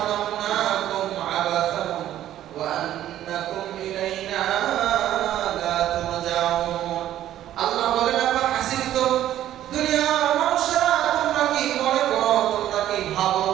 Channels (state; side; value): quieter; left; 12.4 dB